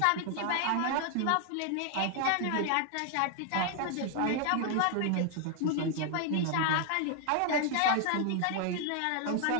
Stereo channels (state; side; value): different; both; correlation 0.00